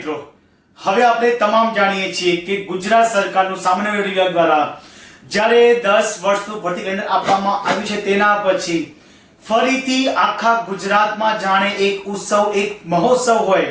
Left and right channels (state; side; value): identical; both; correlation 1.00